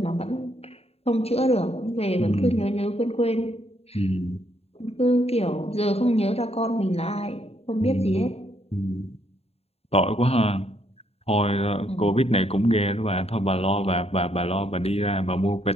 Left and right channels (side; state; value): right; late; 0.29 ms